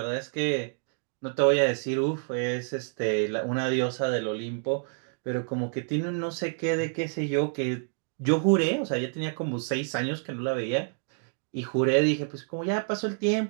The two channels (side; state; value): left; silent; digital silence